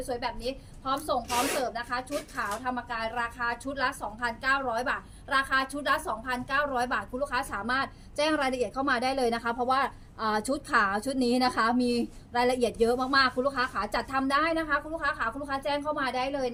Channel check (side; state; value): both; identical; correlation 1.00